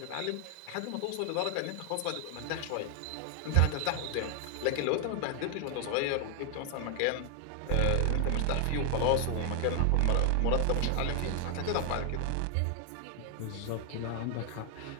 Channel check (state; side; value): different; both; correlation 0.00